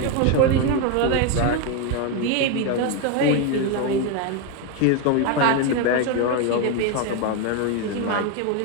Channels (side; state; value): both; different; correlation 0.02